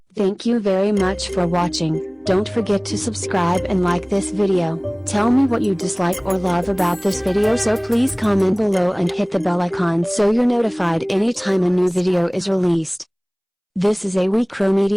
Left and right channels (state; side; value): identical; both; correlation 1.00